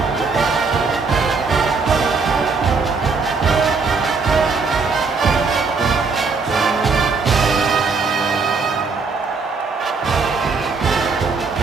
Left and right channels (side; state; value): left; quieter; 4.6 dB